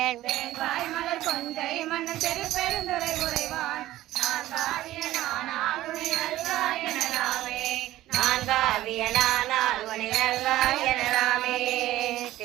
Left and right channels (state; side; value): quieter; left; 15.3 dB